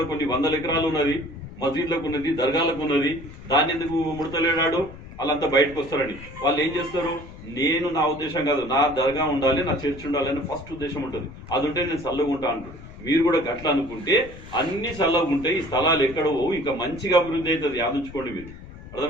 కొన్ని 100 ఎకరాలు ఉన్నది, మసీద్లకు ఉన్నది, దర్గాలకు ఉన్నది. దాన్ని ఎందుకు ముడతలేడాడు? వాళ్ళంతా బయటకు వస్తారని. వాళ్ళు ఏం చేస్తారు? నేను, నా ఉద్దేశం కాదు, నా దర్గా ఉండాలి, నా చర్చ్ ఉండాలి అని ఫస్ట్ ఉద్దేశం ఉంటుంది. అది ఉంటే నేను చల్లగా ఉంటా అంటాడు. మీరు కూడా గట్ల అనుకుంటే అన్ని చల్లగా ఉంటాయి. ఈ స్థలాలు ఎక్కడో ఇంకా మంచిగా అభివృద్ధి అవుతుంది. ఆలోచించుకోండి మీరు.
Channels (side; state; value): left; noise; rumble, 16 dB below the sound